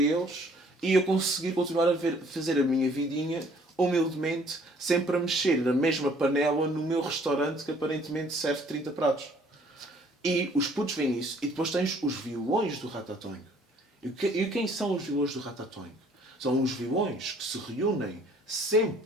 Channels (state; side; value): normal; both; correlation 0.59